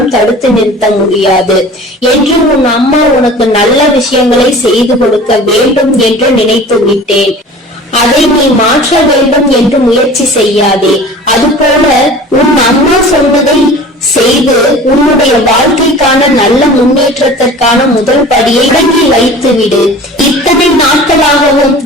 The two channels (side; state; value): both; normal; correlation 0.41